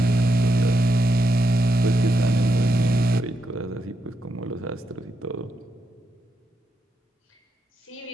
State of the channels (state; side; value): normal; both; correlation 0.83